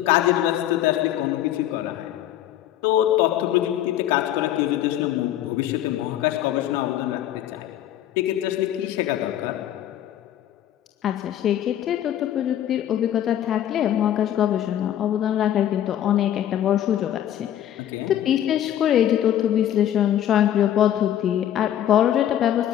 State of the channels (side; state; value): right; quieter; 11.4 dB